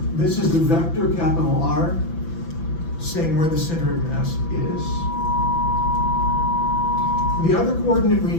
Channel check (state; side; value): late; right; 5.9 ms